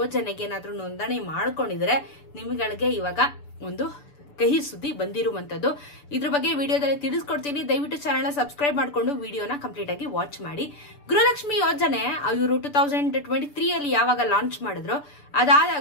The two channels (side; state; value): right; late; 6.9 ms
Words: ಏನಾದ್ರೂ ನೋಂದಣಿ ಮಾಡ್ಕೊಂಡಿದ್ರೆ ನಿಮ್ಗಳಿಗೆ ಇವಾಗ ಒಂದು ಕಹಿ ಸುದ್ದಿ ಬಂದಿರುವಂತದ್ದು. ಇದ್ರ ಬಗ್ಗೆ ವಿಡಿಯೋದಲ್ಲಿ ತಿಳಿಸ್ಕೊಡ್ತೀನಿ. ದಯವಿಟ್ಟು ಚಾನೆಲ್ ಸಬ್ಸ್ಕ್ರೈಬ್ ಮಾಡ್ಕೊಂಡು ವಿಡಿಯೋನ ಕಂಪ್ಲೀಟ್ ಆಗಿ ವಾಚ್ ಮಾಡಿ. ಗೃಹಲಕ್ಷ್ಮಿ ಯೋಜನೆ ಇವರು 2023 ಅಲ್ಲಿ ಯಾವಾಗ ಲಾಂಚ್ ಮಾಡಿದ್ರು,